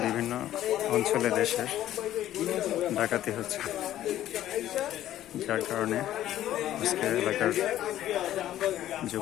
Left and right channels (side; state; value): right; quieter; 12.9 dB